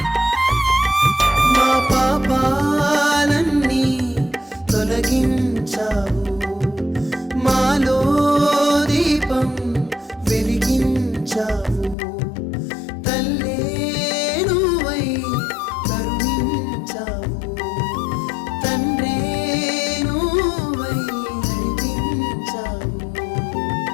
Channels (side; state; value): right; drops out; at 12.0 s